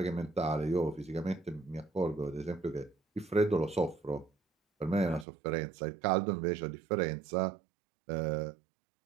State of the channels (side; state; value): left; drops out; at 5.2 s